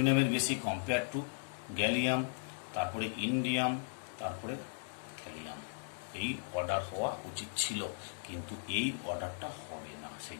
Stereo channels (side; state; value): right; silent; digital silence